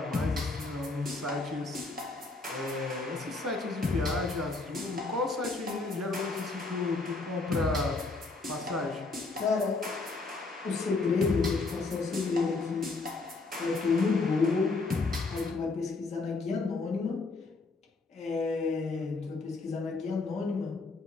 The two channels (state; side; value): quieter; right; 3.7 dB